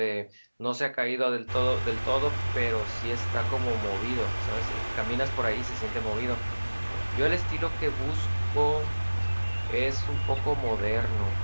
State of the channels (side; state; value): both; inverted; correlation -1.00